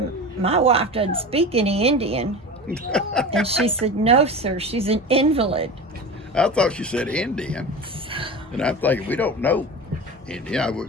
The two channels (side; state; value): both; normal; correlation 0.30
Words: "My wife doesn't speak any Indian." And she said, "No, sir, she's an invalid." I thought she said Indian. And I'm thinking, we don't know Indian. I